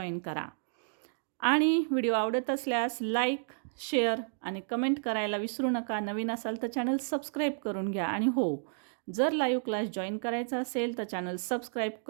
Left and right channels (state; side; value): silent; left; digital silence